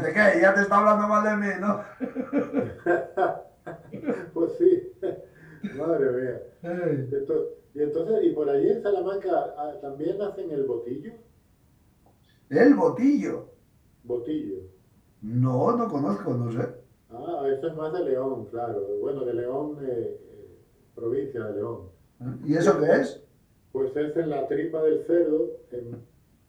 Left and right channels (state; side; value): identical; both; correlation 1.00